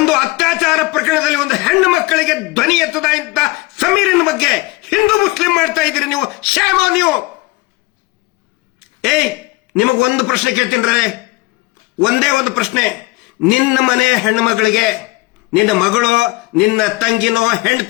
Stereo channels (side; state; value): right; quieter; 22.3 dB